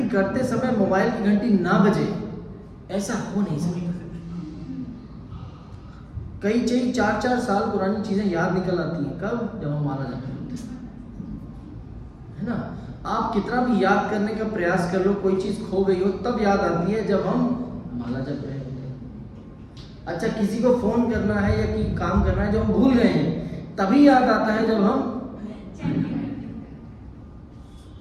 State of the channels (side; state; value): both; identical; correlation 1.00